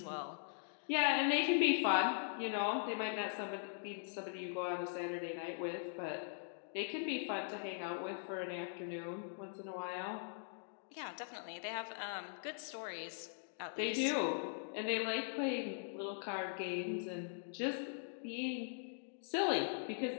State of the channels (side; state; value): right; silent; digital silence